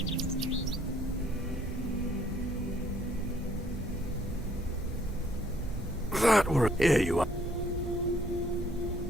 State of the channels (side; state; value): both; normal; correlation 0.64